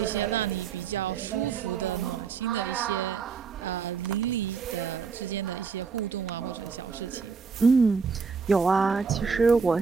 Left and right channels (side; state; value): left; quieter; 5.5 dB